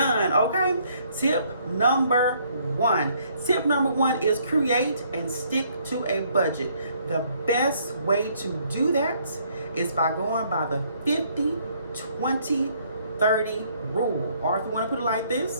Okay, tip number 1 is create and stick to a budget. The best way to do that is by going by the 50-20-30 rule, or if you want to put it like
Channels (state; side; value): inverted; both; correlation -0.66